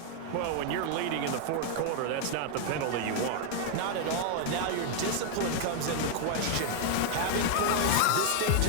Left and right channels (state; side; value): different; both; correlation 0.00